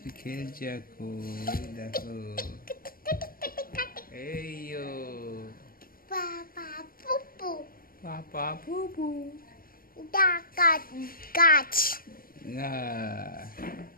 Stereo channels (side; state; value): right; late; 0.42 ms